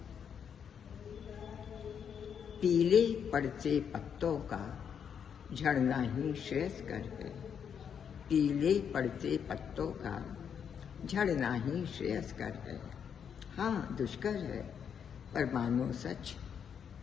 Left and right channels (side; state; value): right; quieter; 7.7 dB